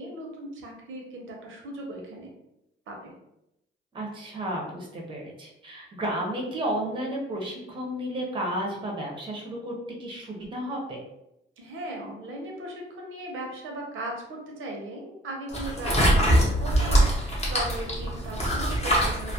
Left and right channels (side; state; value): both; normal; correlation 0.53